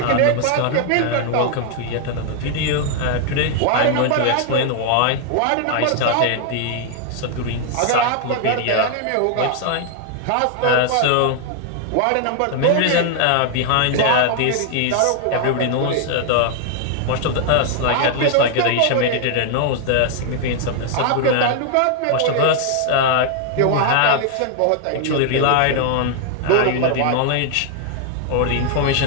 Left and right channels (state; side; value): different; both; correlation 0.00